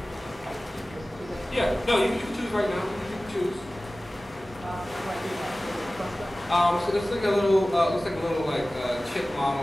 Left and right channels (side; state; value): both; normal; correlation 0.97